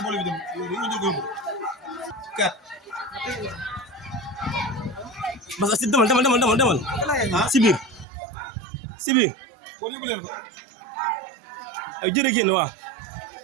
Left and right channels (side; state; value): left; drops out; at 8.1 s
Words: bolu bi dem ñu jóg kat parce que demal si biir ko ñu leen ko ay jërë génn waaw